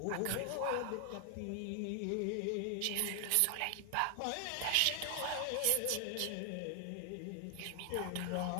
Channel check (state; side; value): different; both; correlation 0.00